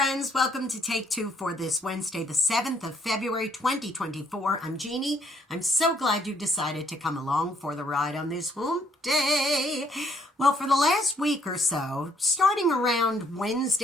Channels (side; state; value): both; normal; correlation 0.68